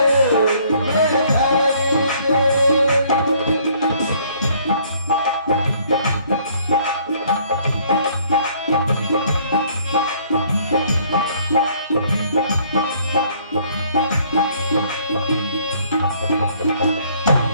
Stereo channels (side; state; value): both; inverted; correlation -0.61